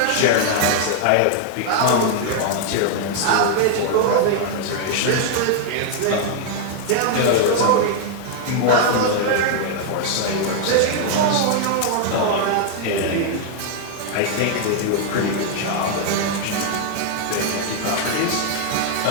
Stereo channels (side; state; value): both; different; correlation 0.00